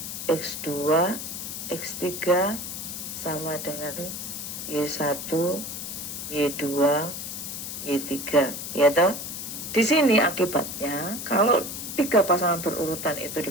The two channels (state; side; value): noise; left; hiss, 7 dB below the sound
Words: X2, X3 sama dengan Y1, Y2, Y3. Ya toh? Di sini akibatnya kalau tiga pasangan berurutan itu